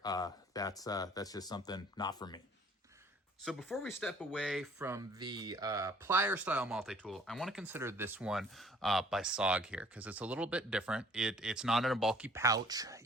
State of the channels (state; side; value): normal; both; correlation 0.55